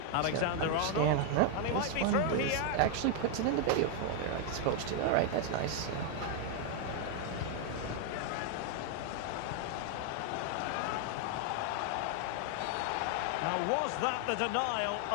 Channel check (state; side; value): different; both; correlation 0.00